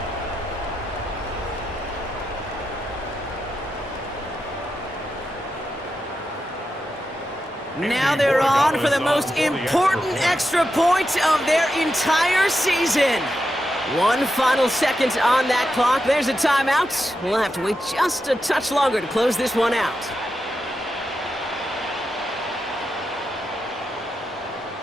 Now they're on for the most important extra point of their entire season. One final second on that clock. There's a timeout. We'll have to wait just a touch longer to close this one out.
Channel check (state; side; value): normal; both; correlation 0.87